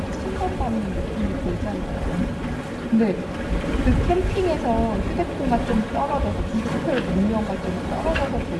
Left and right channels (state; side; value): identical; both; correlation 1.00